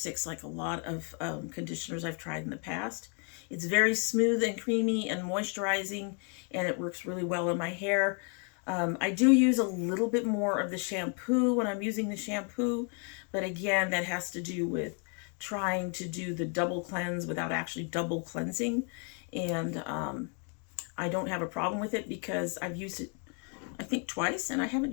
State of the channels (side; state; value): right; quieter; 39.4 dB